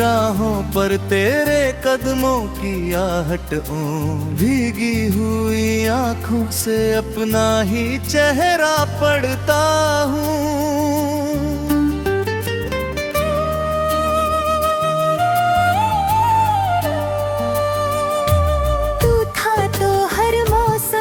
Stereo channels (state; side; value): identical; both; correlation 1.00